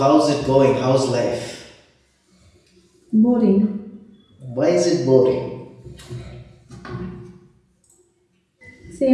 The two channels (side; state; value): both; identical; correlation 1.00